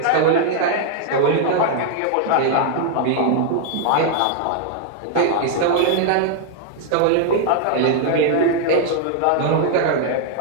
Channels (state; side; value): different; both; correlation 0.00